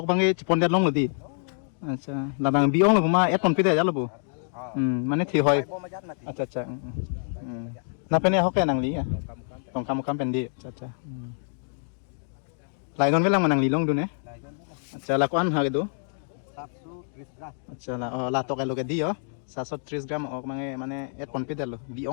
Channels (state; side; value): silent; right; digital silence